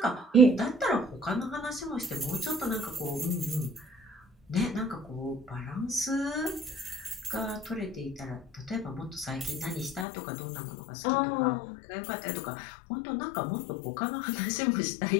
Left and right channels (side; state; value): right; drops out; at 10.1 s